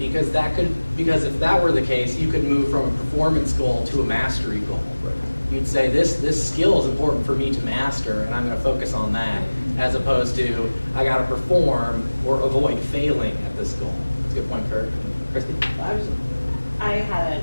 if that were the case, you could move from a performance goal to a mastery goal. Right. You'd say this skill is important for me to master, and I'm going to focus on that, as opposed to I got to perform or avoid failing at this goal. That's a good point, Kurt. Christy? I had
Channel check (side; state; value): both; inverted; correlation -1.00